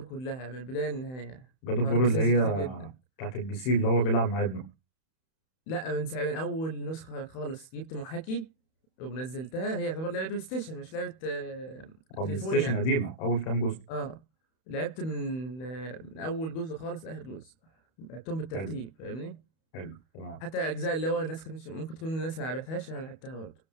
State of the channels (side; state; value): right; late; 31 ms